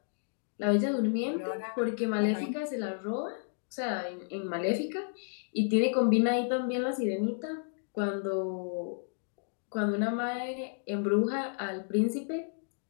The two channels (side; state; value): right; silent; digital silence